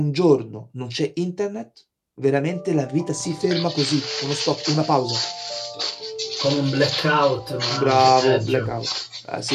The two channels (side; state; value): both; identical; correlation 1.00